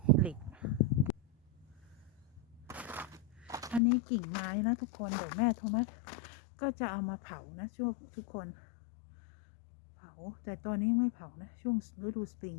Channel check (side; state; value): right; drops out; at 3.8 s